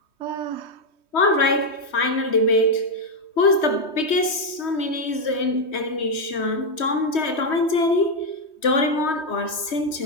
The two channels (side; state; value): right; late; 3.2 ms